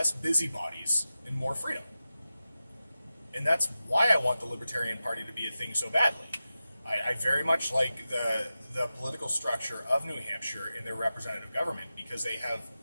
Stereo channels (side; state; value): both; inverted; correlation -0.93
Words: busybodies and more freedom. And that's why I want the Libertarian Party to be a thing so badly. I very much like the political structure of New Hampshire in their representative government because they have